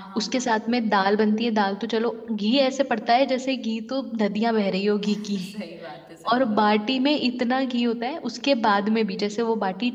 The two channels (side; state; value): both; identical; correlation 1.00